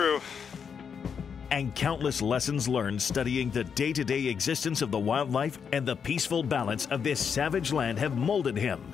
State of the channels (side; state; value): right; quieter; 6.8 dB